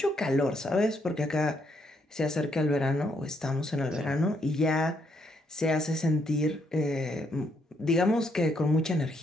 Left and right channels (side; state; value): both; normal; correlation 0.74